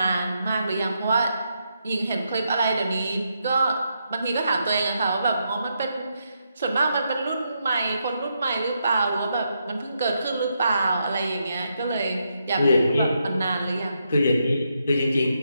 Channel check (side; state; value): both; inverted; correlation -0.81